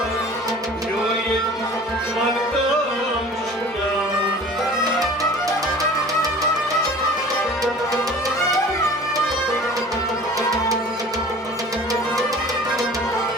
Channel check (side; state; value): both; normal; correlation 0.44